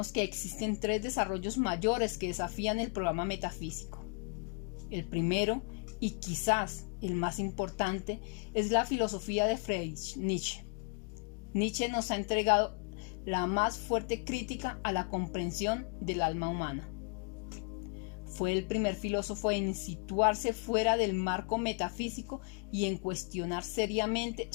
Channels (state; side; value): quieter; right; 37.0 dB